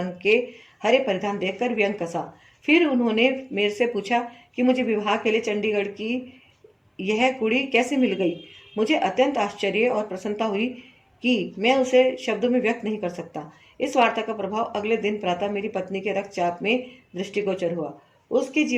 के हरे परिधान देखकर व्यंग कसा। फिर उन्होंने मेरे से पूछा कि मुझे विवाह के लिए चंडीगढ़ की यह कुड़ी कैसे मिल गई। मुझे अत्यंत आश्चर्य और प्रसन्नता हुई कि मैं उसे शब्दों में व्यक्त नहीं कर सकता। इस वार्ता का प्रभाव अगले दिन प्रातः मेरी पत्नी के रक्तचाप में दृष्टिगोचर हुआ। उसके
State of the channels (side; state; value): both; identical; correlation 1.00